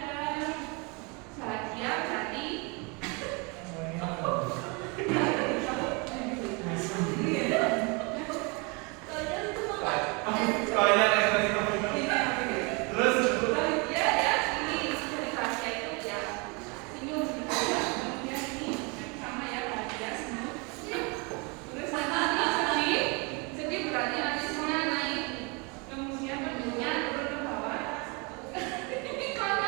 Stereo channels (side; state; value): left; quieter; 30.3 dB